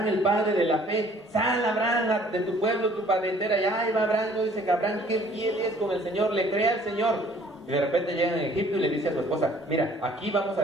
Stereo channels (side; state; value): both; normal; correlation 0.57